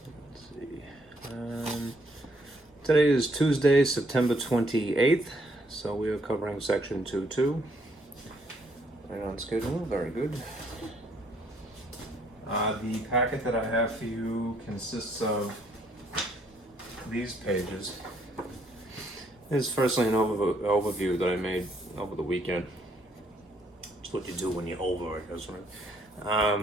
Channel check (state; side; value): normal; both; correlation 0.69